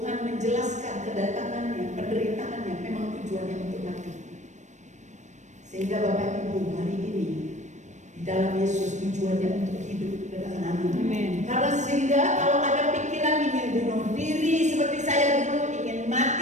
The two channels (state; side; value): late; left; 0.34 ms